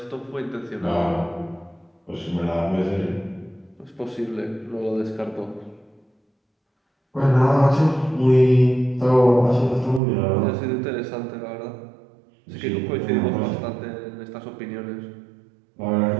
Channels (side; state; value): left; drops out; at 10.0 s